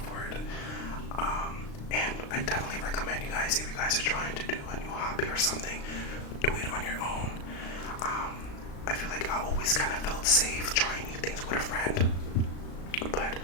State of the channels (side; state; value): right; late; 36 ms